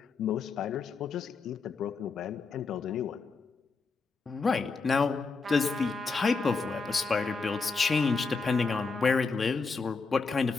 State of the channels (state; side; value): quieter; right; 4.5 dB